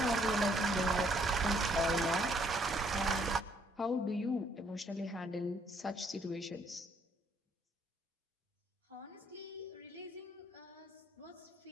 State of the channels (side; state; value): both; normal; correlation 0.67